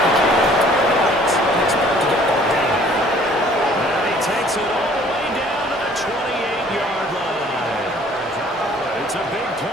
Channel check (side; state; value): both; normal; correlation 0.56